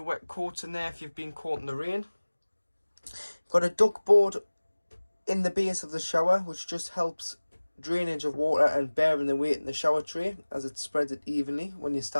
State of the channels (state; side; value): inverted; both; correlation -1.00